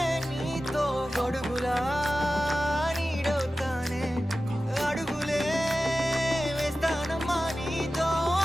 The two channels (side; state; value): both; normal; correlation 0.95